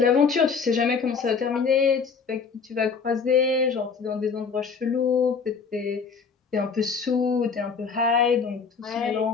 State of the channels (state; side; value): quieter; right; 5.5 dB